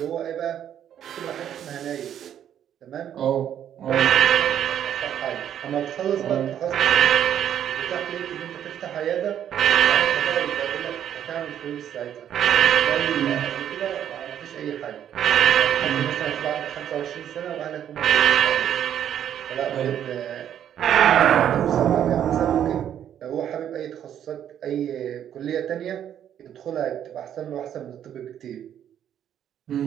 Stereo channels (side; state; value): left; quieter; 10.0 dB